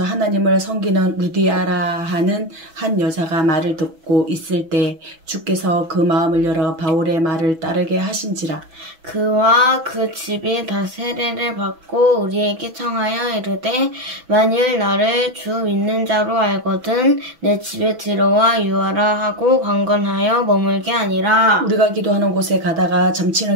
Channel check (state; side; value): late; left; 6.1 ms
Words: 하나님을 섬기는 루디아라 하는 한 여자가 말을 듣고 있을 때 주께서 그 마음을 열어 바울의 말을 따르게 하신지라. 그와 그 집이 다 세례를 받고 우리에게 청하여 이르되 만일 나를 주 믿는 자로 알거든 내 집에 들어와 유하라 하고 강건하여 머물게 아니라. 우리가 기도하는 곳에 가다가